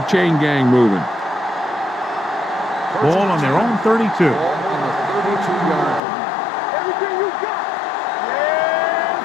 chain gang moving. Ball on their own 32. Everything you got.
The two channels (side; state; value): right; drops out; at 6.0 s